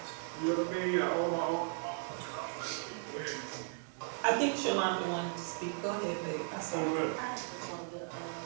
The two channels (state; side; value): silent; left; 54 dB below the other